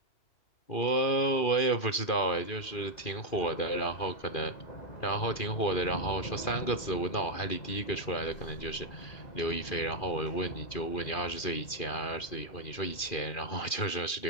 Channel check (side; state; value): right; late; 2.4 ms